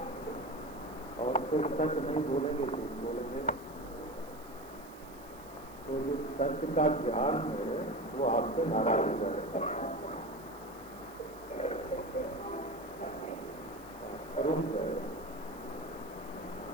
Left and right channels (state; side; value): noise; right; hiss, 21 dB below the sound